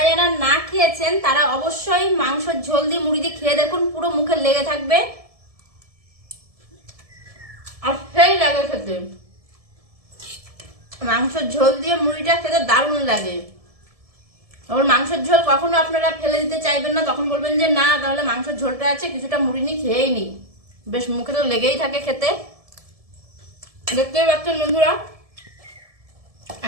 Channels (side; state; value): left; late; 1.7 ms